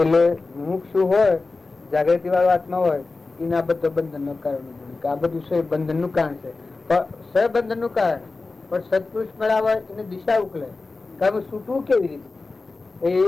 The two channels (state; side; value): quieter; right; 3.7 dB